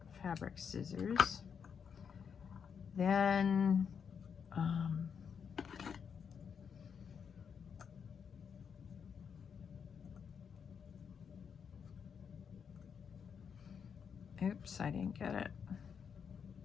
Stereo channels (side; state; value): right; quieter; 6.9 dB